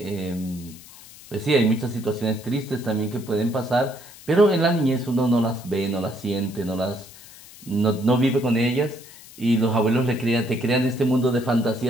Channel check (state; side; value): noise; left; hiss, 19 dB below the sound